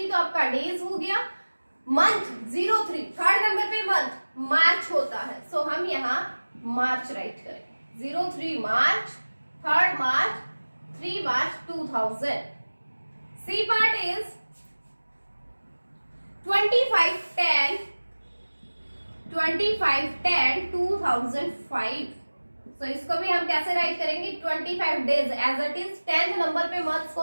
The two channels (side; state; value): both; inverted; correlation -1.00